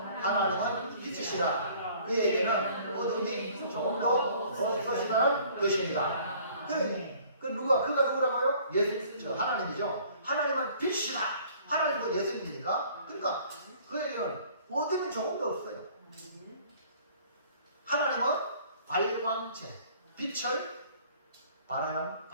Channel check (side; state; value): both; inverted; correlation -0.54